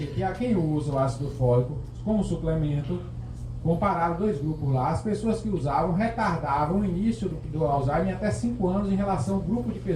a quem usa o ácido fólico como suplemento, compararam dois grupos lá, as pessoas que usavam retardavam o início do Alzheimer em até 5 anos em relação ao grupo de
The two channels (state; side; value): identical; both; correlation 1.00